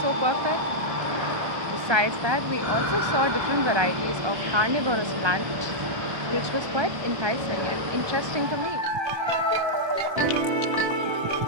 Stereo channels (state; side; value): late; left; 1.3 ms